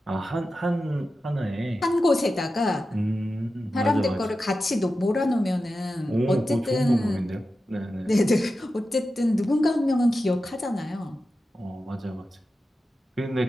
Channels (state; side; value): normal; both; correlation 0.92